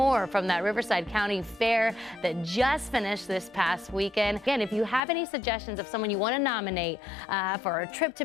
from that Riverside County Fair that just finished this past weekend. Again, if you have any suggestions of someone you want to nominate for a trip to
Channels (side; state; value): right; drops out; at 5.0 s